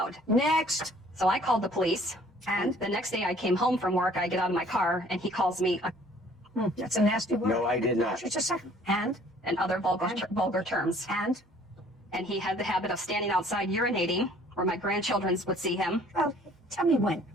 Next. So I called the police. And? The next day I came home from work, I get out of my car and he calls me That's a nasty word. No, I did not. Just a second. And? and other vulgar terms. And? And he had the habit of standing outside urinating where my grandchildren would see him. Well, tell me when.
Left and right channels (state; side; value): normal; both; correlation 0.56